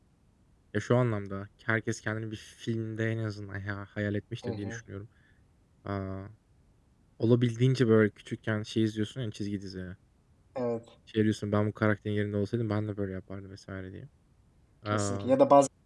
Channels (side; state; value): both; identical; correlation 1.00